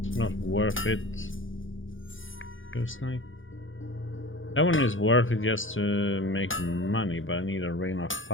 Not worth it. Feels like that one is worth it just to make money, but I need a rain of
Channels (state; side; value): late; right; 0.57 ms